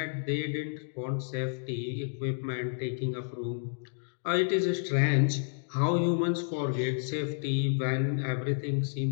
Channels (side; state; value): right; silent; digital silence